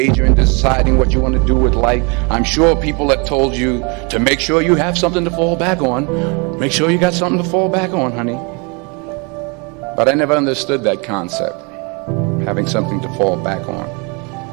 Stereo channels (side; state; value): left; quieter; 32.1 dB